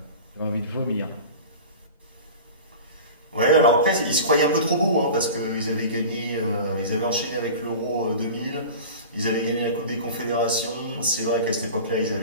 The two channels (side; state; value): both; inverted; correlation -0.36